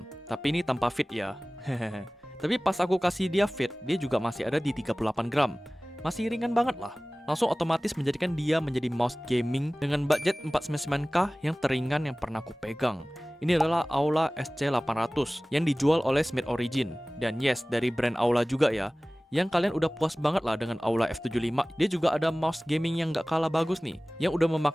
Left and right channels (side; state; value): both; normal; correlation 0.98